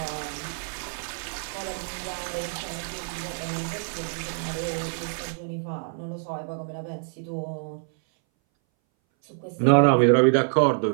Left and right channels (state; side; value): silent; left; 60 dB below the other